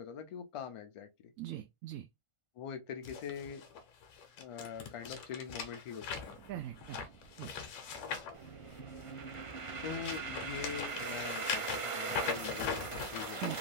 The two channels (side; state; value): right; late; 1.5 ms